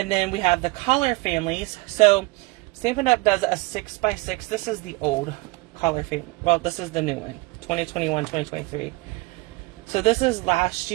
then we have the collar families. So Stampin' Up! Does a 6x6. This is the old collar family. Well, this is the new one, 2021, 2023. So this is last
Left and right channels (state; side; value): quieter; left; 23.6 dB